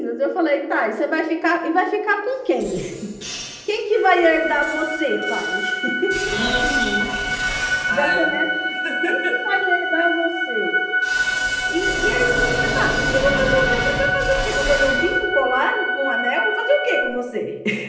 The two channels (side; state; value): both; identical; correlation 1.00